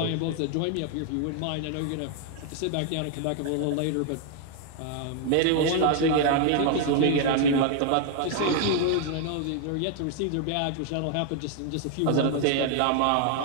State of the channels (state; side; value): different; both; correlation 0.00